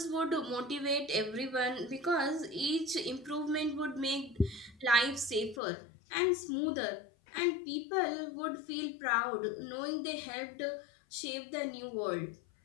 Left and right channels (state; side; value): drops out; right; at 5.6 s